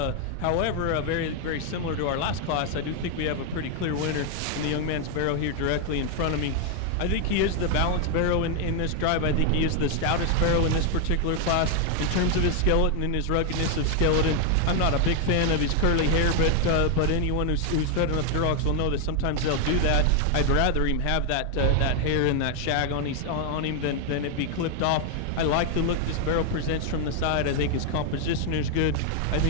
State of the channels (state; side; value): different; both; correlation 0.00